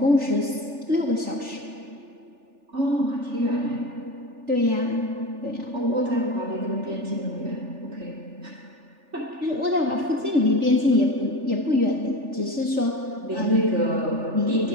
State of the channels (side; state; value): left; late; 3.4 ms